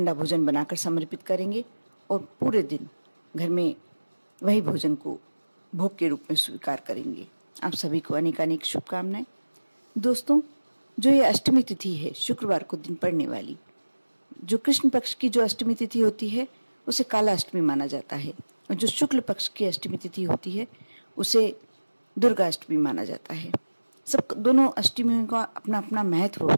भोजन बनाकर समर्पित करेंगे और पूरे दिन घर में वही भोजन को भोग के रूप में स्वीकार करेंगे। आप सभी को अनेकानेक शुभकामनाएं। दोस्तों, जो ये अष्टमी तिथि है, शुक्रवार को दिन पड़ने वाली, जो कृष्ण पक्ष की जो अष्टमी तिथि होती है उसे काला अष्टमी माना जाता है, और जो शुक्ल पक्ष की अष्टमी तिथि होती है उसे दुर्गा अष्टमी माना जाता है। सब दोनों अष्टमियों का अपना अपना महत्व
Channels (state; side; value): inverted; both; correlation -1.00